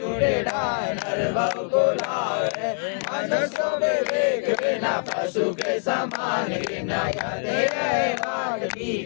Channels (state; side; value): silent; right; 59 dB below the other